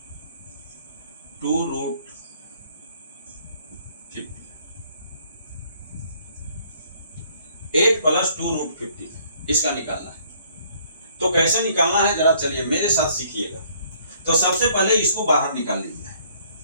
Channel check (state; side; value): inverted; both; correlation -0.61